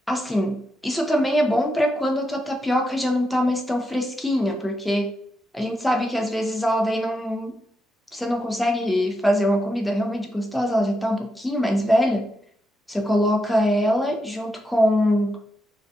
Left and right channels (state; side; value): normal; both; correlation 0.84